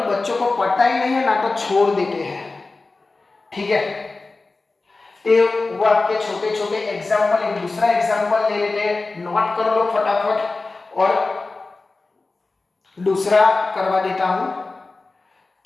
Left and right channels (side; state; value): right; quieter; 3.5 dB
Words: बच्चों को पता ही नहीं है ना, तो छोड़ देते हैं। ठीक है, ये वो आपके छोटे छोटे एग्जाम्पल। एक दूसरा एग्जाम्पल ले लेते हैं, नोट कर लो फटाफट और दूसरा करवा देता हूं।